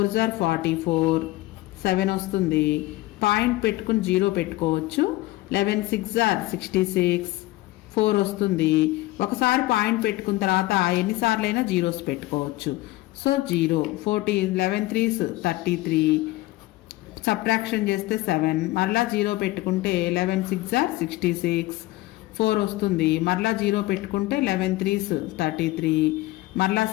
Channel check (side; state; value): right; quieter; 18.4 dB